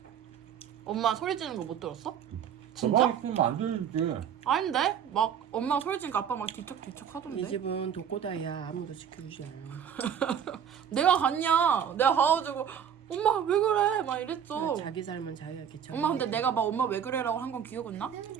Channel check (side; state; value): left; quieter; 8.5 dB